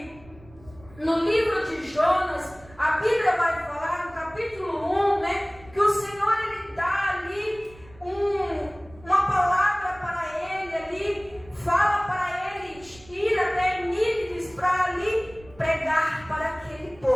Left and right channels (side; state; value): right; noise; rumble, 23 dB below the sound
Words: no livro de Jonas, a Bíblia vai falar no capítulo 1, né, que o Senhor, ele dá ali uma palavra para ele ali, fala para ele ir até Nínive para ali pregar para aquele